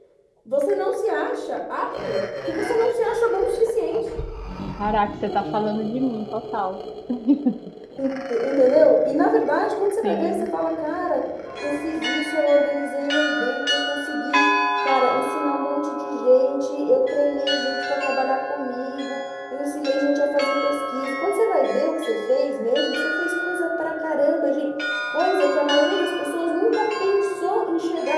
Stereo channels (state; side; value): identical; both; correlation 1.00